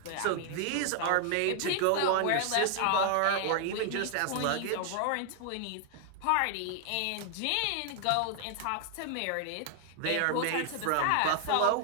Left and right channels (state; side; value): different; both; correlation 0.00